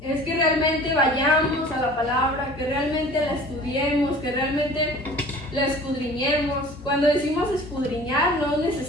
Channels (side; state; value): both; normal; correlation 0.45